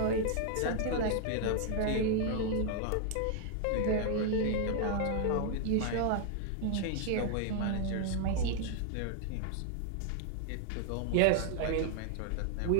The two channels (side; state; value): both; different; correlation 0.00